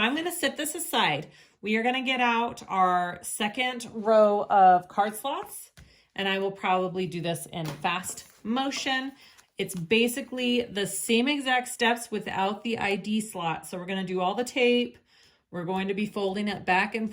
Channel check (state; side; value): identical; both; correlation 1.00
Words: gonna set this aside. We are gonna get out our second row of card slots, and I will probably do this in fast motion. It's basically the same exact steps without the ID slot. So we're gonna do all the tape. We're going to be folding it back and